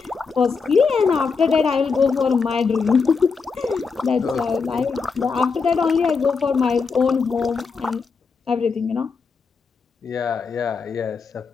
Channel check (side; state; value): right; quieter; 5.1 dB